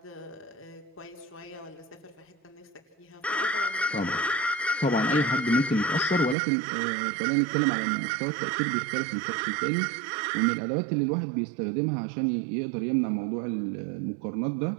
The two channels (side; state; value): left; drops out; at 6.4 s